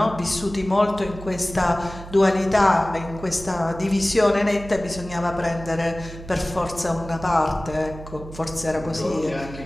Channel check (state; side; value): noise; right; hum, 14 dB below the sound